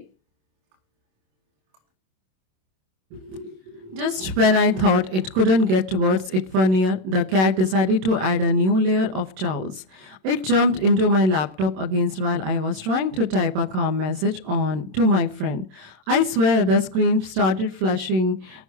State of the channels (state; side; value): late; left; 27 ms